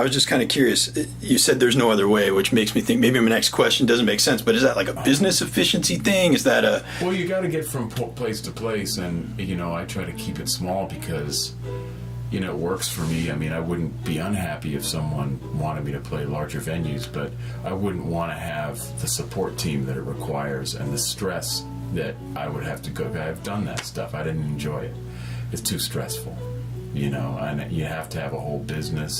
was just kind of curious. You said there's no other way, which makes me think maybe my next question doesn't make sense. But is that like a business efficiency thing? Is that a... Well, you got to get from place to place, and I try to keep it small because it works for me. I wouldn't be unhappy if someone wanted me to play larger venues, but I wouldn't want to have the support team that it requires and the stress that I would have to go. I've done that stuff. I didn't enjoy it. It's too stressful, and you have to have a whole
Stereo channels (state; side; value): identical; both; correlation 1.00